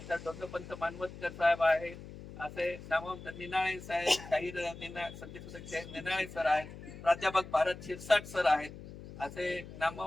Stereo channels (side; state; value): left; noise; hum, 14 dB below the sound